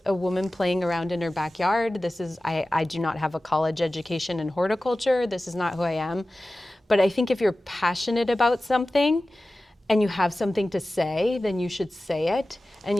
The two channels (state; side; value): normal; both; correlation 0.96